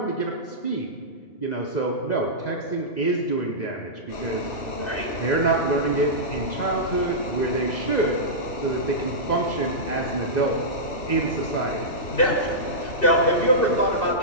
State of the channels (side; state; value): right; late; 2.6 ms